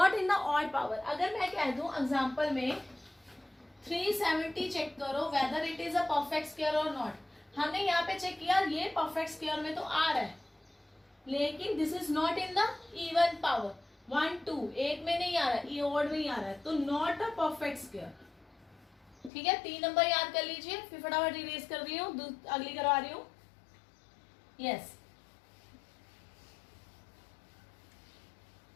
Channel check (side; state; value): right; drops out; at 19.3 s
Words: in the odd power. अगर मैं कह दूं एग्जांपल में 370 चेक करो whether it is a perfect square और नॉट. हमने यहाँ पे चेक किया, ये परफेक्ट स्क्वायर में तो आ रहा है, लेकिन this is not in the even power. 1 2 एक में नहीं आ रहा है, ये ऑड में ही आ रहा है, तो नॉट अ परफेक्ट स्क्वायर. ठीक है, 3 नंबर याद कर लीजिए. फिर फटाफट रिलीज कर रही हूँ, अगली करवा रही हूँ. यस,